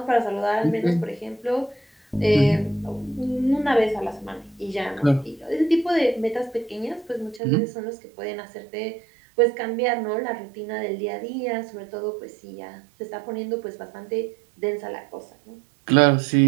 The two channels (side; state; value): left; drops out; at 7.4 s